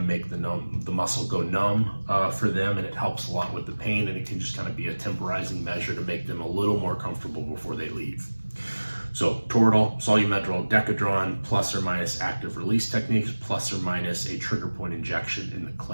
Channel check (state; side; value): inverted; both; correlation -1.00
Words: to make the muscle go numb for them, and it helps a lot with the pain, and it can just kind of be a temporizing measure to make them a little more comfortable before they leave. So Toradol, Solumedrol, Decadron, plus or minus active release techniques, plus or minus a trigger point injection in the